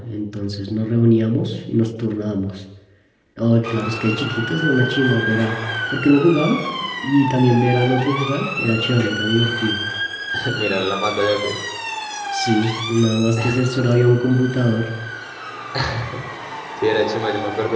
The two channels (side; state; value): both; identical; correlation 1.00